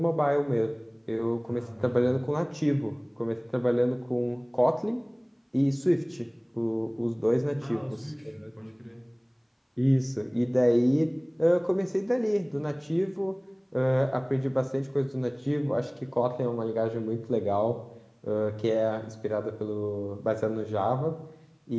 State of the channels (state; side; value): identical; both; correlation 1.00